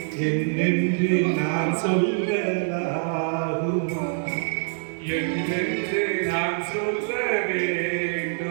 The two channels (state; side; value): silent; left; digital silence